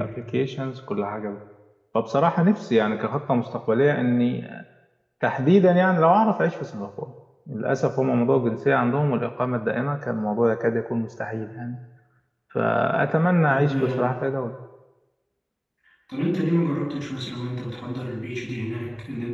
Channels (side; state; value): both; identical; correlation 1.00